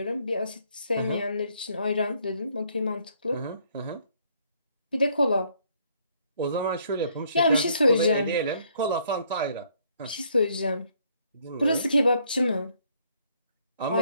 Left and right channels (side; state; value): both; inverted; correlation -0.67